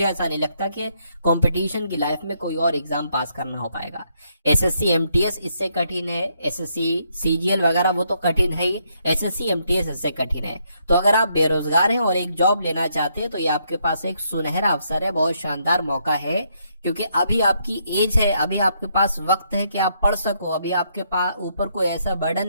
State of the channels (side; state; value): both; inverted; correlation -0.74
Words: ऐसा नहीं लगता कि कंपटीशन की लाइफ में कोई और एग्जाम पास करना हो पाएगा। एसएससी एमटीएस इससे कठिन है, एसएससी सीजीएल वगैरह वो तो कठिन है ही, एसएससी एमटीएस इससे कठिन है। तो अगर आप बेरोजगार हैं और एक जॉब लेना चाहते हैं तो ये आपके पास एक सुनहरा अवसर है, बहुत शानदार मौका है, क्योंकि अभी आपकी एज है, अभी आपके पास वक्त है कि आप पढ़ सको। अभी आपके पास ऊपर कोई ऐसा बर्डन